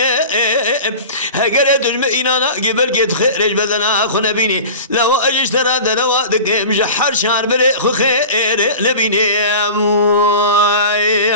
اگر دجم اینانا قبل گت خرج بدنا خونه بینی لو اجش ترى دنوا دقم جحر شهر بره خو خير نبینه يا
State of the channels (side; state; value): both; inverted; correlation -0.35